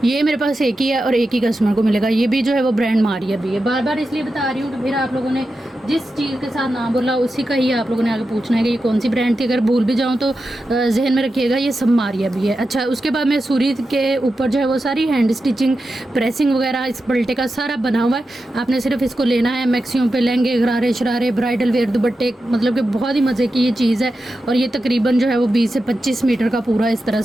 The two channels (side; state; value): both; normal; correlation 0.90